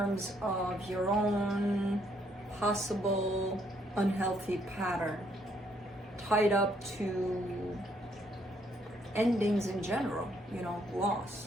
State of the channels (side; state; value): both; normal; correlation 0.70